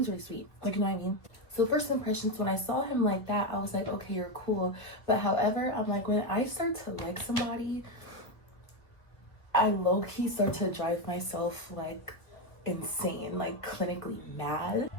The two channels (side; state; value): right; late; 1.4 ms